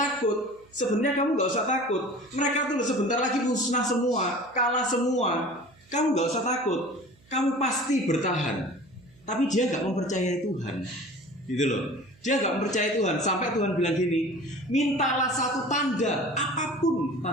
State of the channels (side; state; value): right; noise; hum, 30 dB below the sound